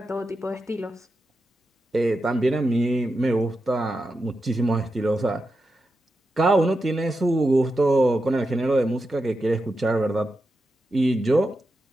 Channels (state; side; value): normal; both; correlation 0.89